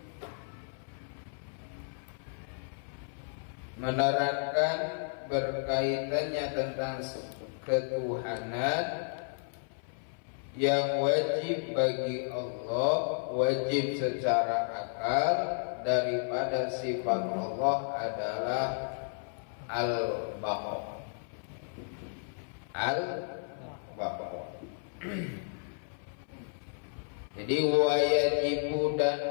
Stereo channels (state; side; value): silent; right; 56 dB below the other